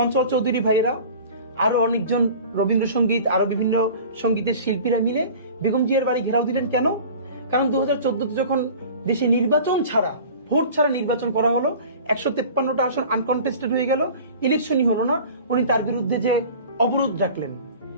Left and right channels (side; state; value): both; inverted; correlation -0.41